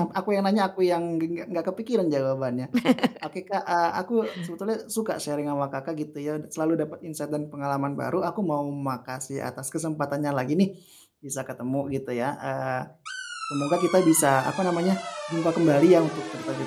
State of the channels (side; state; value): both; identical; correlation 1.00